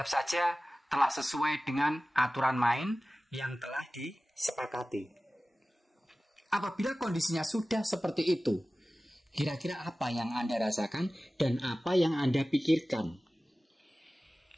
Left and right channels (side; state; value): both; normal; correlation 0.97